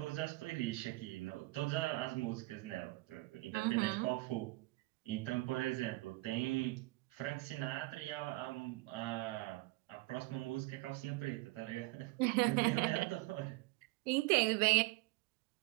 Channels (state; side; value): quieter; left; 21.7 dB